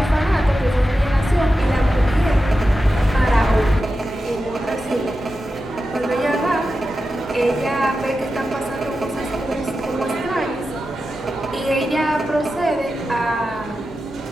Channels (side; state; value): both; normal; correlation 0.91